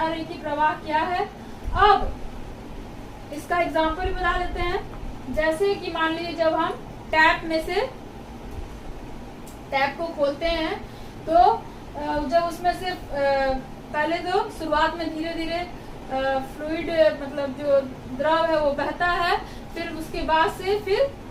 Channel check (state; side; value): identical; both; correlation 1.00